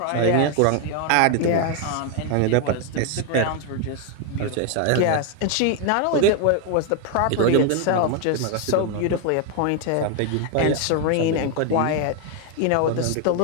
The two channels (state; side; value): different; both; correlation 0.01